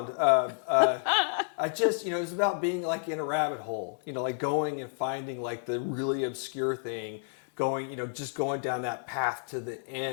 I just, you know, it's about being like in a rabbit hole, you know, like going and finding like the really obscure thing, going, you know, just going down that path to the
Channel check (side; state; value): right; silent; digital silence